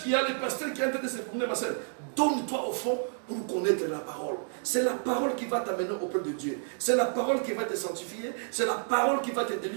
qu'il y a les pasteurs qui ont été de se promener, ma soeur. Donne-toi au fond pour connaître la parole. C'est la parole qui va t'amener auprès de Dieu. C'est la parole qui va te sanctifier. C'est la parole qui va te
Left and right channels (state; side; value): silent; left; digital silence